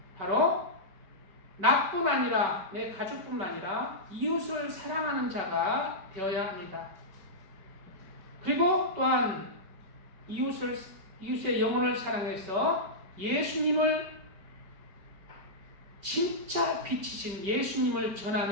바로 나뿐 아니라 내 가족뿐만 아니라 이웃을 사랑하는 자가 되어야 합니다. 그리고 또한 이웃의 영혼을 사랑해서 예수님을, 진짜 빛이신 예수님을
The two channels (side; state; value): left; late; 5.2 ms